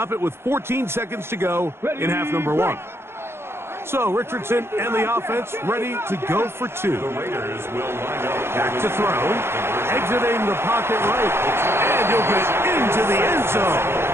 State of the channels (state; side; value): late; left; 0.12 ms